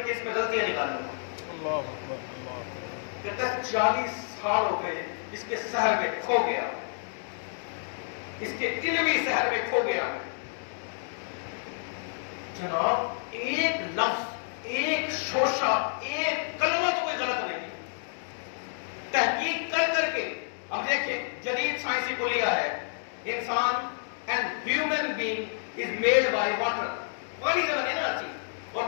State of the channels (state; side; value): silent; right; digital silence